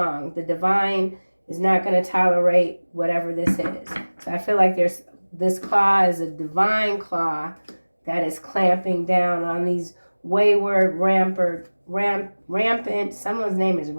The divine is not going to tolerate whatever this is. So I feel like this claw is a divine claw that is clamping down on these wayward, rampant, someone's name is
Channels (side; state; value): both; inverted; correlation -1.00